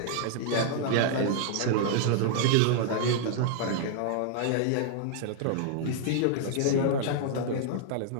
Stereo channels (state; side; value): different; both; correlation -0.01